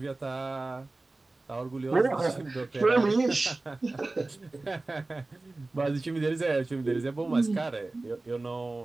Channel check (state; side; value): quieter; left; 3.1 dB